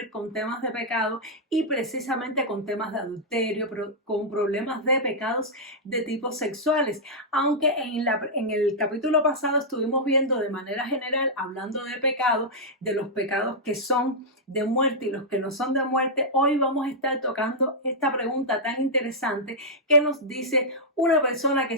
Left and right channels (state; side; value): normal; both; correlation -0.08